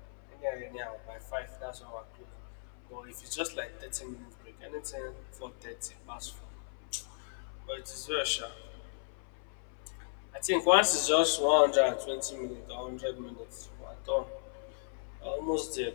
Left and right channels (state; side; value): silent; right; 54 dB below the other